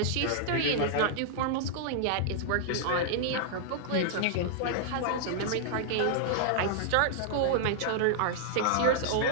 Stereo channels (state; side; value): different; both; correlation -0.01